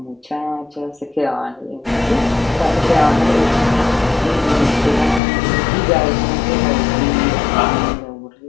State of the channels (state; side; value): drops out; right; at 5.2 s